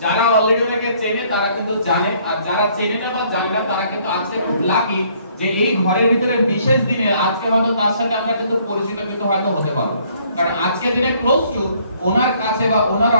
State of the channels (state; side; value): inverted; both; correlation -0.63